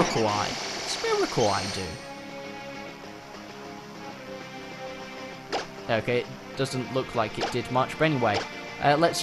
Eye. What's Miracle Eye do? Okay, doesn't look like it did much. But anyway, let's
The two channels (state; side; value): identical; both; correlation 1.00